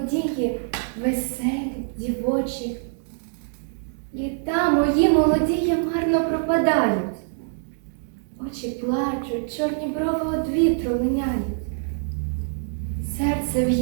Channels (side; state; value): left; silent; digital silence